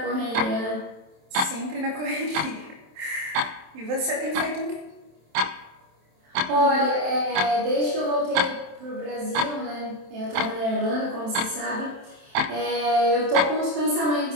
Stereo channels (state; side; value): late; left; 27 ms